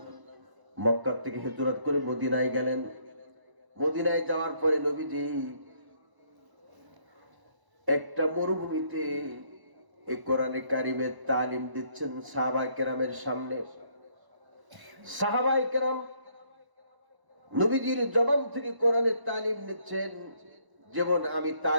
মক্কা থেকে হিজরত করে মদিনায় গেলেন। মদিনায় যাওয়ার পরে নবীজি একটা মরুভূমিতে এই কোরআনে কারীমের তালিম দিচ্ছেন সাহাবায়ে কেরামের সামনে। সাহাবায়ে কেরাম নবীজির জবান থেকে কোরআনের তালিম নিচ্ছেন। যেমন আমি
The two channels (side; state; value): left; late; 1.0 ms